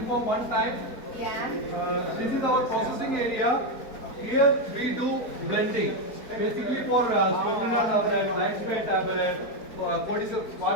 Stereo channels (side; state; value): right; late; 4.4 ms